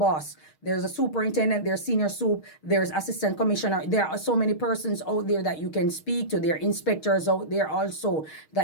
There's a superintendent, there's senior soup, there's assistant commissioner. There are so many persons out there that you can speak to. There are inspectors out there also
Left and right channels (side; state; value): right; late; 6.4 ms